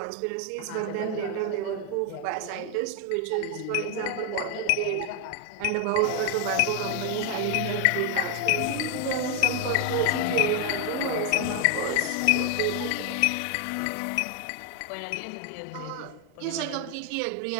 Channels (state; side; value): different; both; correlation 0.01